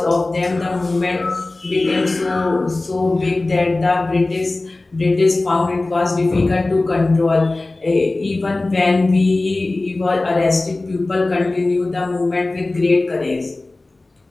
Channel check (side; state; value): right; quieter; 3.0 dB